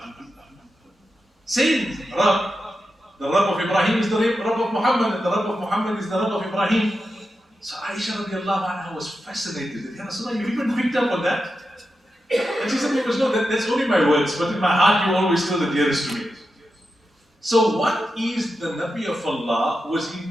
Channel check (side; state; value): both; normal; correlation 0.89